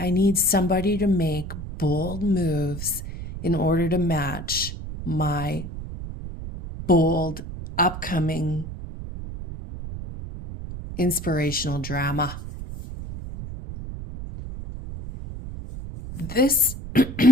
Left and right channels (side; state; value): right; noise; rumble, 9 dB below the sound